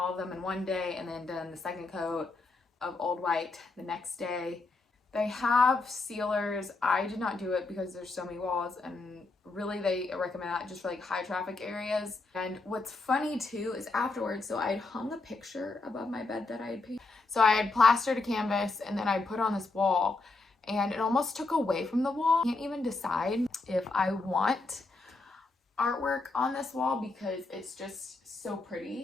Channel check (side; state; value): right; quieter; 3.5 dB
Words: of them in one day, and then done the second coat of Old White the next day. They have sealers. I did not do it because there's so many walls, and really they recommend that just for like high traffic areas. And what's funny too is afterwards, so I had hung a picture above my bed that I had painted. So I had plastered a canvas and then I put on this wall, and it almost took away from the wall. I can't even decide if I want artwork on this wall because it's just so